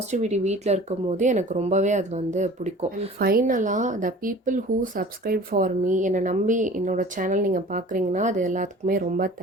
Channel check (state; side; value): normal; both; correlation 0.44